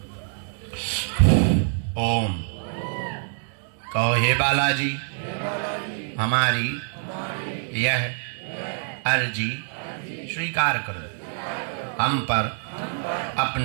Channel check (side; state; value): left; silent; 61 dB below the other